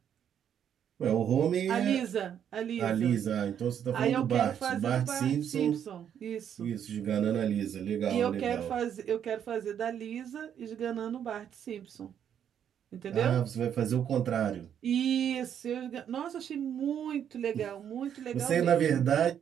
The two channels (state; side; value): quieter; left; 9.0 dB